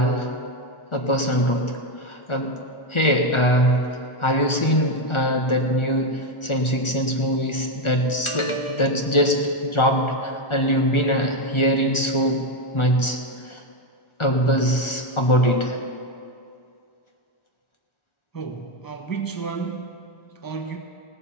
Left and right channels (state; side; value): late; right; 1.4 ms